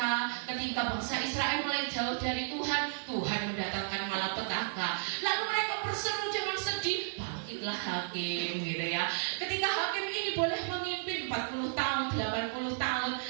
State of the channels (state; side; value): silent; left; digital silence